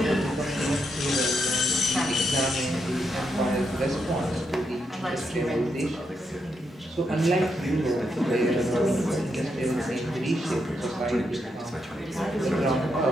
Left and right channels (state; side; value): normal; both; correlation 0.81